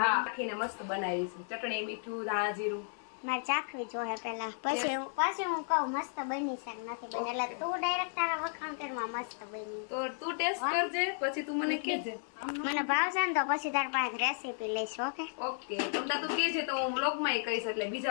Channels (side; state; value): right; silent; 55 dB below the other